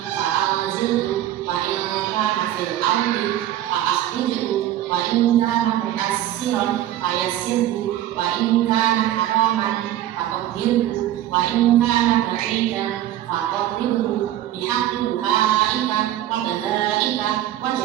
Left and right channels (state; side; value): quieter; left; 12.9 dB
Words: wa in kana fil ardi fa'akhrijhu wa in kana muyassiran fayassirhu wa in kana haraman fatahhirhu wa in kana ba'idan faqarribhu bihaqqi du'aika wa dalaika wa